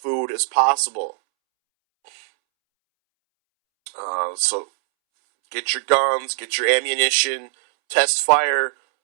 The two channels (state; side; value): silent; left; 65 dB below the other